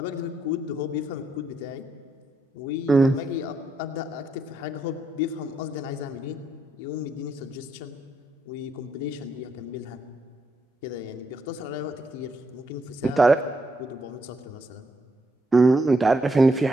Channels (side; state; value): both; normal; correlation 0.78